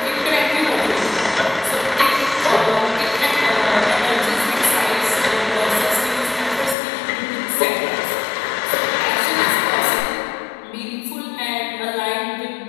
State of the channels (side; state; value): right; drops out; at 6.8 s